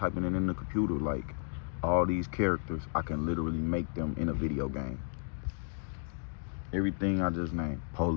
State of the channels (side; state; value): right; silent; 55 dB below the other